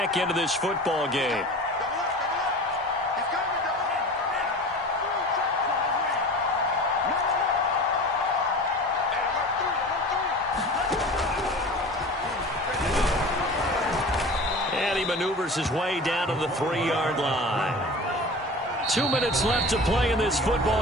into this football game. And he maneuvers his way down to the 3-yard line. 2 minutes left to play in this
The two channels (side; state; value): both; normal; correlation 0.36